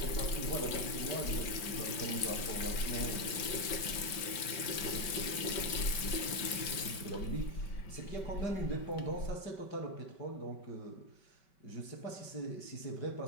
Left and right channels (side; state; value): right; late; 5.2 ms